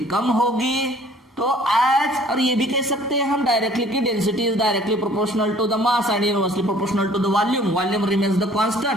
कम होगी। तो एज, और ये भी कह सकते हैं हम डायरेक्टली कि density is directly proportional to the mass and inversely proportional to the volume. Volume remains the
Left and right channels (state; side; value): normal; both; correlation 0.54